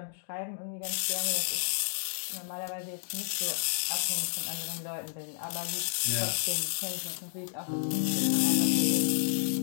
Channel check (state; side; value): silent; right; digital silence